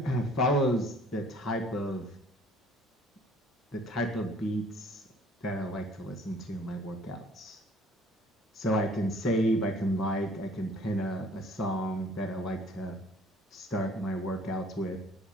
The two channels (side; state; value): both; normal; correlation 0.55